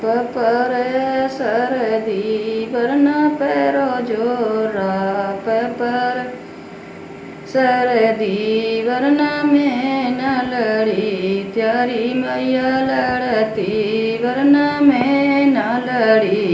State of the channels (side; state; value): both; identical; correlation 1.00